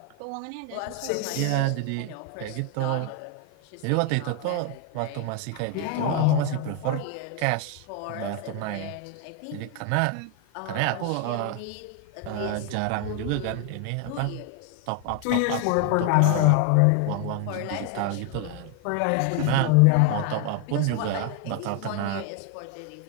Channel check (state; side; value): different; both; correlation 0.01